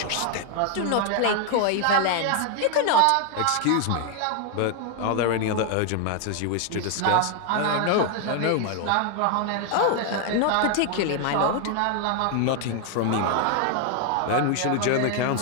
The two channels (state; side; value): different; both; correlation 0.00